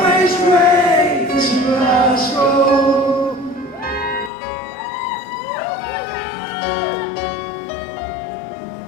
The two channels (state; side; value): drops out; right; at 4.3 s